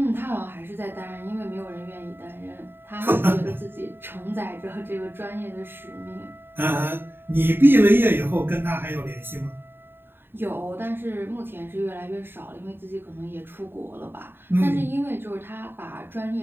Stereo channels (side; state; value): left; late; 0.10 ms